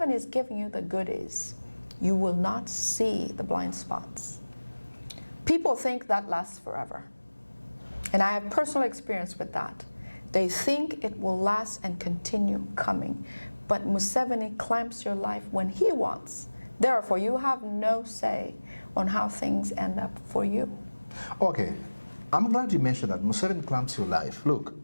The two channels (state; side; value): inverted; both; correlation -1.00